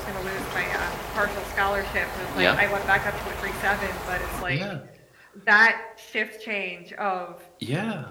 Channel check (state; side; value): identical; both; correlation 1.00